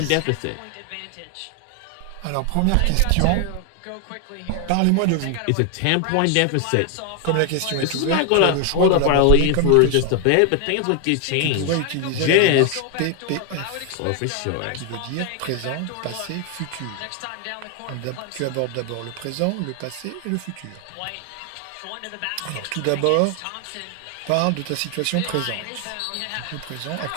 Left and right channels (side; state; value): both; different; correlation 0.00